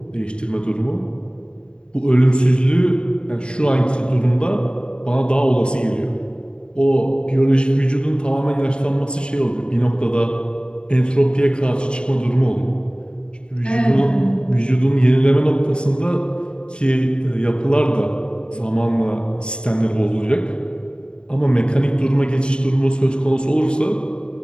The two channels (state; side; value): late; right; 0.051 ms